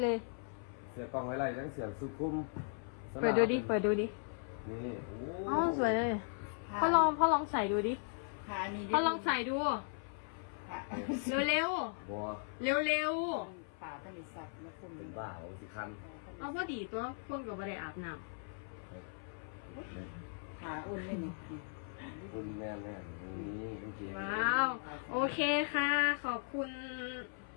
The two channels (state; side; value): silent; right; 53 dB below the other